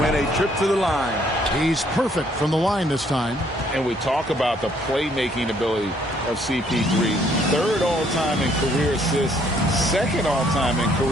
a trip to the line. He's perfect from the line this time. And we talk about the playmaking ability of CP3. 3rd all-time in career assists, 2nd all-time in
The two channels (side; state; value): both; normal; correlation 0.66